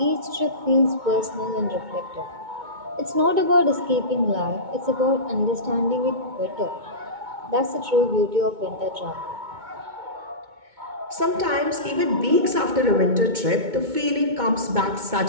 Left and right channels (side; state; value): left; late; 2.2 ms